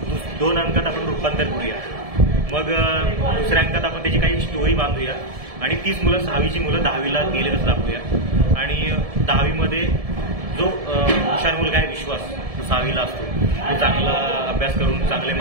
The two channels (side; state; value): left; late; 1.7 ms